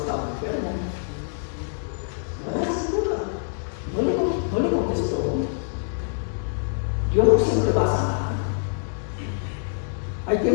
enfermo. No le contestó. Dios no siempre va a sanar. Hay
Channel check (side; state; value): right; silent; digital silence